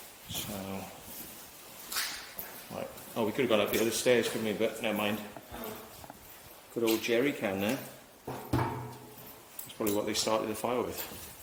So, right. Oh, we could have gone up the other stairs, couldn't we? But never mind. Good old jerry can there. That's probably what they started the fire with.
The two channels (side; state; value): both; identical; correlation 1.00